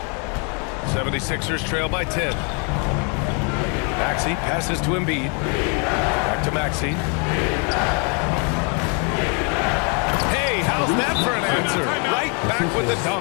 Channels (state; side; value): quieter; right; 36.9 dB